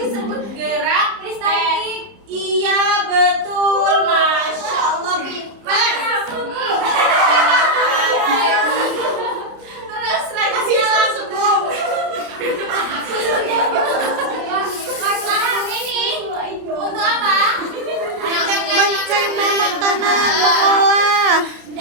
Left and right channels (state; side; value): late; left; 30 ms